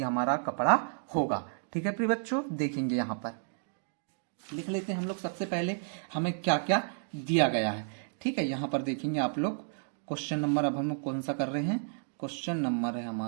हमारा कपड़ा होगा। ठीक है प्रिय बच्चों, देखेंगे यहां पर लिख लेते हैं हम लोग। सबसे पहले हमें क्या क्या दिया गया है। ठीक है, यहां पर देखेंगे आप लोग क्वेश्चन नंबर, अब हम लोग कौन सा कर रहे हैं, क्वेश्चन नंबर है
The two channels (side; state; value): left; silent; digital silence